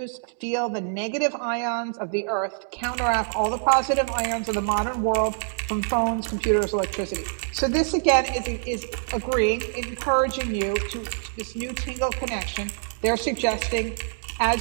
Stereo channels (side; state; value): left; silent; digital silence